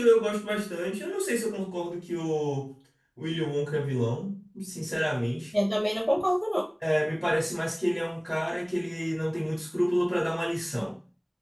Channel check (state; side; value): identical; both; correlation 1.00